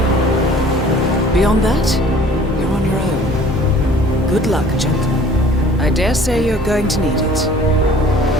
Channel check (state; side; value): normal; both; correlation 0.51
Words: Beyond that, you're on your own. Good luck, gentlemen. I dare say you're going to need it.